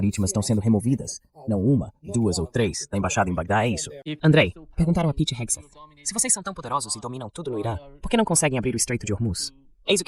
estão sendo removidas, não uma, duas ou três, da embaixada em Bagdá, é isso. Andrei, perguntaram a Pete Hegseth. Se vocês são tão poderosos e dominam tudo no Irã, por que não conseguem abrir o Estreito de Hormuz? Eis o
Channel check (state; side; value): identical; both; correlation 1.00